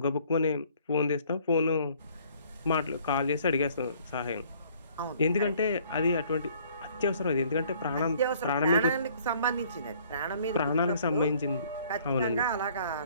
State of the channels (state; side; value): inverted; both; correlation -0.58